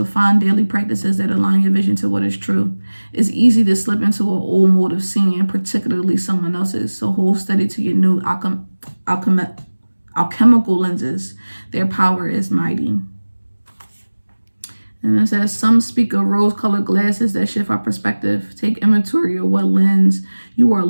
find daily practices that align your vision to what is true. It's easy to slip into an old mode of seeing, particularly someone else's, so hold steady to your new alchemical lenses. Their power is mighty. And it says, some speak of rose-colored glasses that shift our perspective. Take inventory of what lens you are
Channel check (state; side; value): inverted; both; correlation -1.00